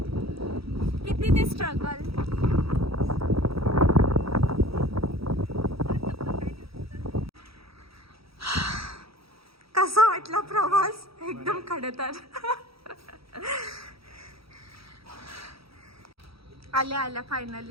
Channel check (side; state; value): left; late; 0.76 ms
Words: स्ट्रगल. कसा वाटला प्रवास? एकदम खडतर. आल्या आल्या